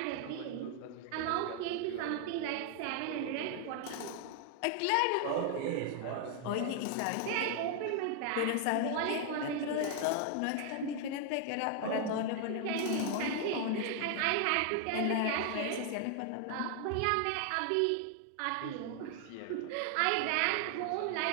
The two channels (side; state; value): both; different; correlation 0.00